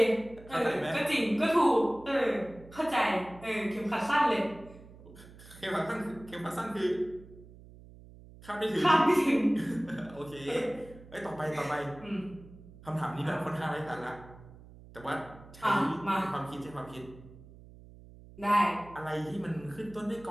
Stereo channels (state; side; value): noise; right; hum, 20 dB below the sound